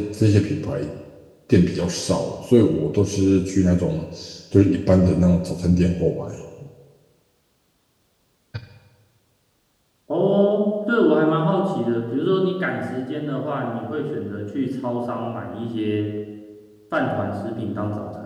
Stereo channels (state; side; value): identical; both; correlation 1.00